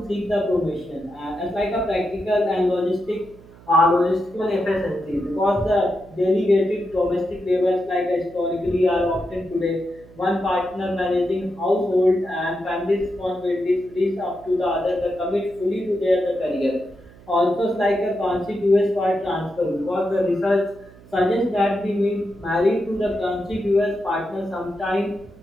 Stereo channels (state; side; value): noise; right; hum, 23 dB below the sound